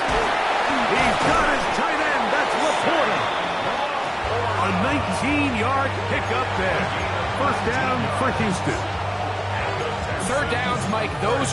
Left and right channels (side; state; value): both; identical; correlation 1.00